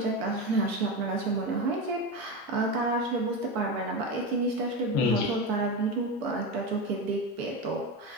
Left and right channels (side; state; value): both; normal; correlation 0.18